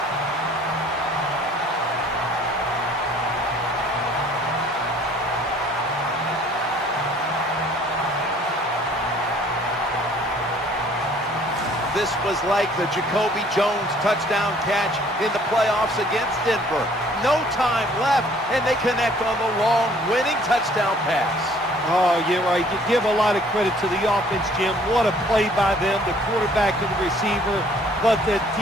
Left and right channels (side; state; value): both; normal; correlation 0.56